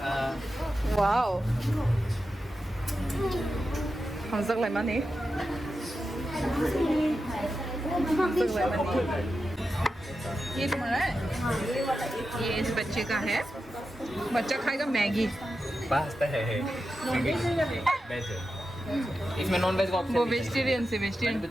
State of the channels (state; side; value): normal; both; correlation 0.90